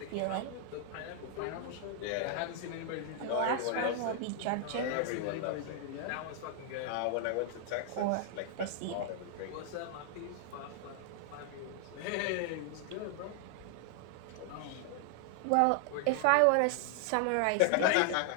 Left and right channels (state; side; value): different; both; correlation 0.00